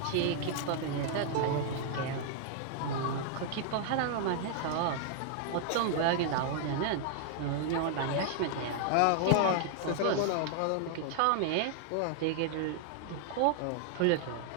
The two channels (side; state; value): both; different; correlation -0.01